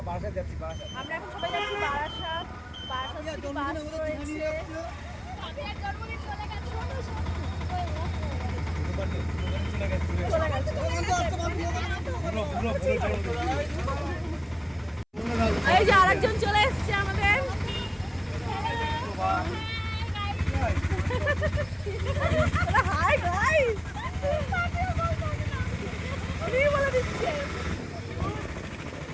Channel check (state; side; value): identical; both; correlation 1.00